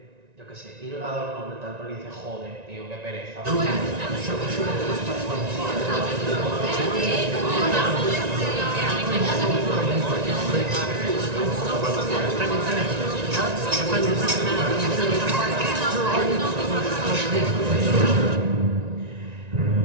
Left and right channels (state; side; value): late; left; 1.9 ms